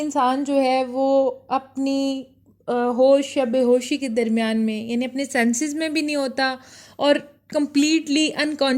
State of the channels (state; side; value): identical; both; correlation 1.00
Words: जो है वो अपनी होश या बेहोशी के दरमियान में, यानी अपने सेंसेस में भी नहीं होता और कंप्लीटली